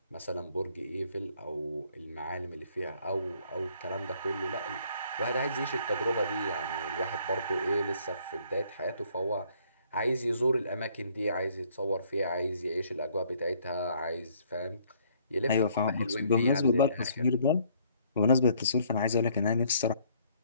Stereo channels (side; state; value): both; inverted; correlation -0.63